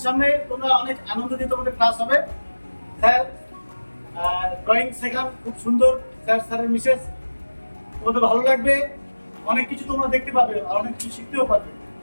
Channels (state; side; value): inverted; both; correlation -1.00